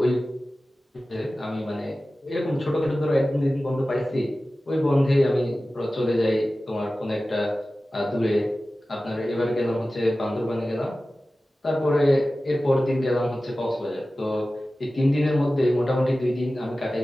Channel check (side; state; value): both; normal; correlation 0.96